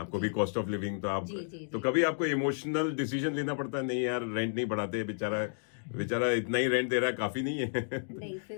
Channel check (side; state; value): right; silent; digital silence